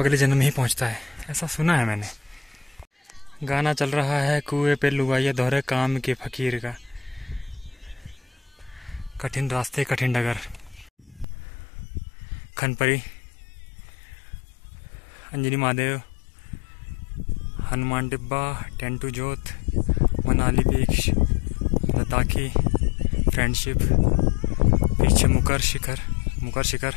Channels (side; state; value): right; drops out; at 11.2 s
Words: जन्म में ही पहुँचता है, ऐसा सुना है मैंने। गाना चल रहा है कुएं पे लुगाइया दोहरे काम के फकीर का। कठिन रास्ते कठिन डगर। खनपरी, अंजनी महादेव, हनुमान डिब्बा, टेंटू जोत, मनाली बीच, लद्दाखी, फ्रेंडशिप, पीछे मुकर शिखर,